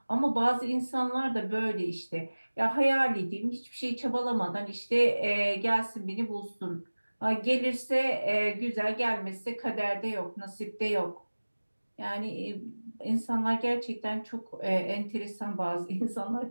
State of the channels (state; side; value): inverted; both; correlation -1.00